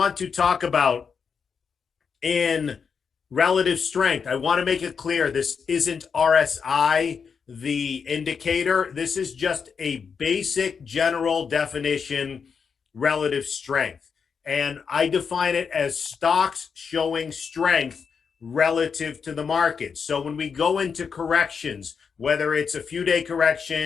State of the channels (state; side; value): quieter; right; 6.1 dB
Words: to talk about in relative strength, I want to make it clear this isn't RSI, the indicator. This is just a basic general definition, relative strength. And I define it as stocks showing strength relative to the market. So when we go into corrections, whether it's a few-day